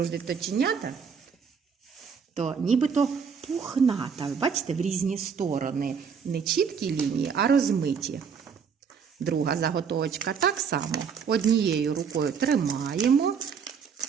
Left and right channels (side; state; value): left; quieter; 6.5 dB